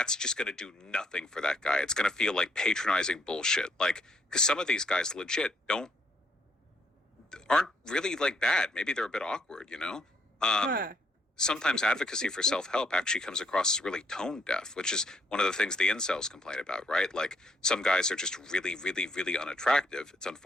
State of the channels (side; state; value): both; normal; correlation 0.71